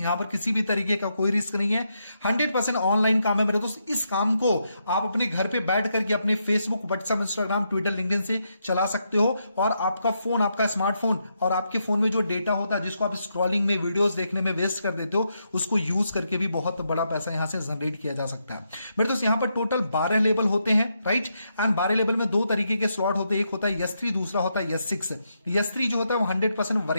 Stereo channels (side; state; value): both; inverted; correlation -0.81